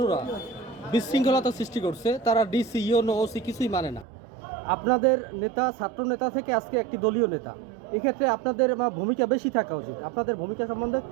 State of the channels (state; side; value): drops out; left; at 4.0 s